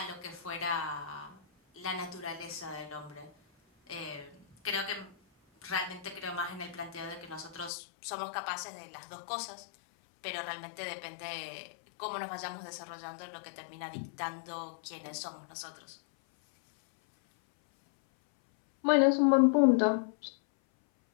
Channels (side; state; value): right; drops out; at 7.7 s